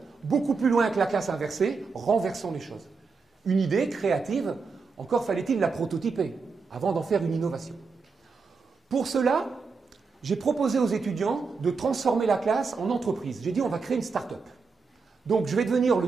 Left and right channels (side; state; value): left; quieter; 4.8 dB